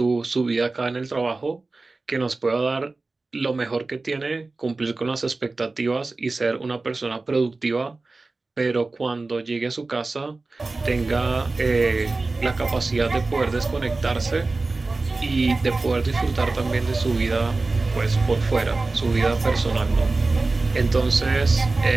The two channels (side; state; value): left; quieter; 3.5 dB